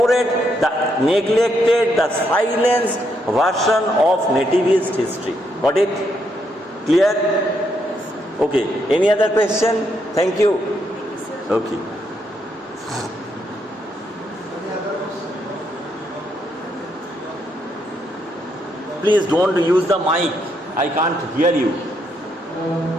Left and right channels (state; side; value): normal; both; correlation 0.77